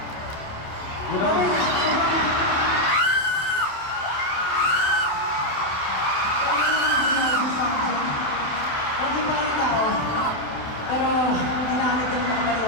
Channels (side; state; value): right; late; 27 ms